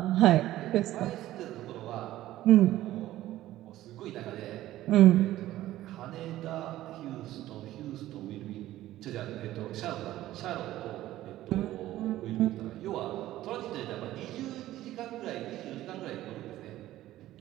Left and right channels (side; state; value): left; quieter; 14.7 dB